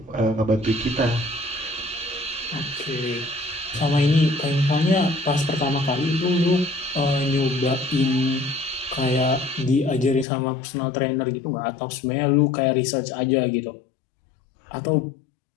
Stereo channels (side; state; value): right; drops out; at 10.2 s